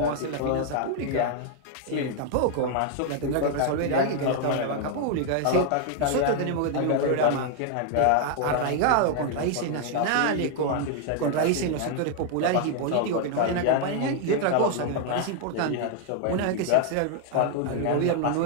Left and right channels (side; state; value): both; different; correlation 0.00